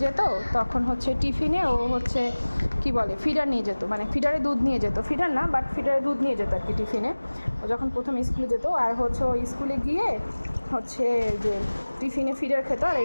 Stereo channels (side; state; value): both; inverted; correlation -1.00